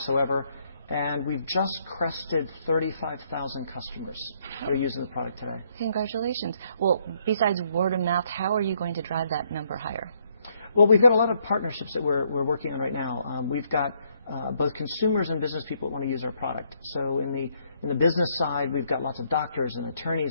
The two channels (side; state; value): both; inverted; correlation -0.71